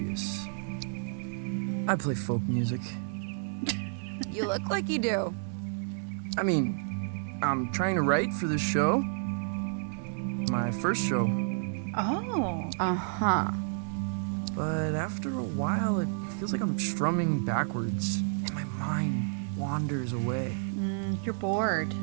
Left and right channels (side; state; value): left; silent; digital silence